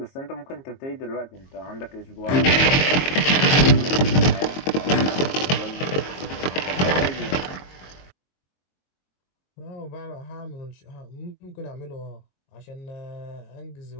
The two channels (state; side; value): late; right; 22 ms